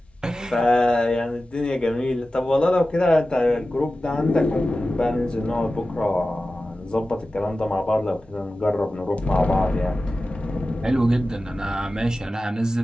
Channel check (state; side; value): normal; both; correlation 0.94